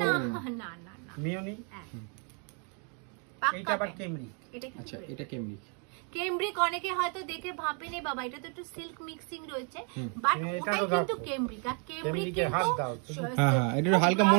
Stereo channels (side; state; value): left; quieter; 39.1 dB